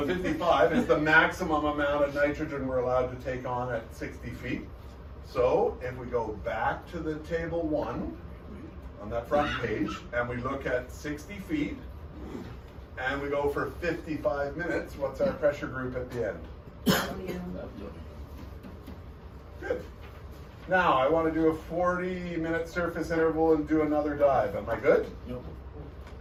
55 is the maximum amount of nitrogen we're allowed to take on at 60 feet. So if we go back to the table 1 on that front page and we look at 60 feet and we go for 55 minutes, what's our pressure group at the end? Good. Now I want to do a 40-minute surface interval and do another dive. Am I good? Nope.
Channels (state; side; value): identical; both; correlation 1.00